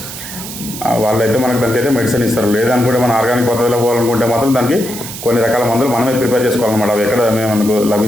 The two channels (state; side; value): noise; right; hiss, 10 dB below the sound